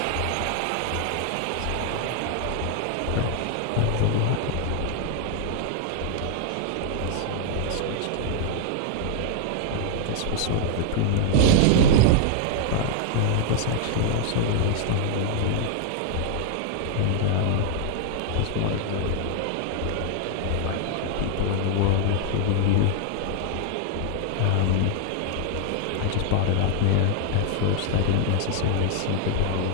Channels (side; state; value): both; different; correlation 0.00